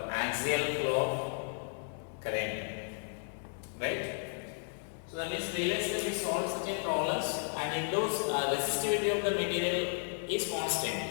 of current, right? So that means previously we solved such a problems, and in those resistivity of the material is constant.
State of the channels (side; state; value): right; silent; 55 dB below the other